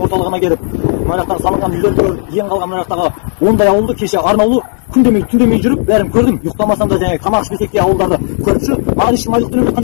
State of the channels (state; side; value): silent; right; digital silence